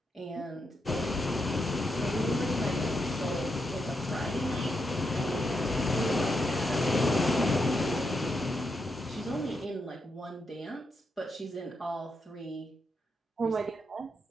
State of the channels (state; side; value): normal; both; correlation 0.83